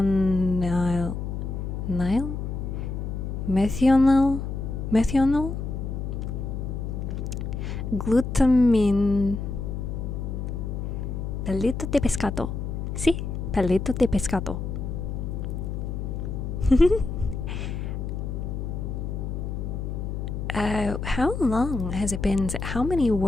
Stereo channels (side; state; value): left; noise; hum, 4 dB below the sound